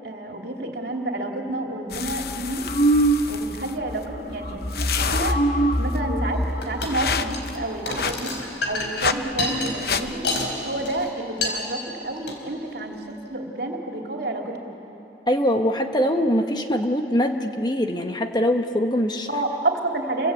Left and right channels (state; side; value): normal; both; correlation 0.38